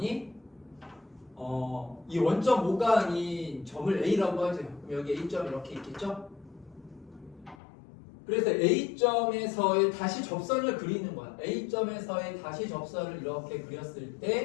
이 원점 5가 아닌 점을 A라고 하죠. 그럼 여기 A점 이렇게 있겠죠? 그래서 A점에서의 다시 접선을 그리는 거야. A점에서의 다시 접선을 이렇게 그렸을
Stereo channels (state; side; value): drops out; right; at 7.6 s